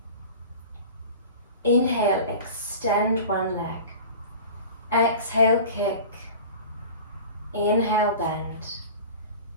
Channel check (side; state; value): both; inverted; correlation -0.37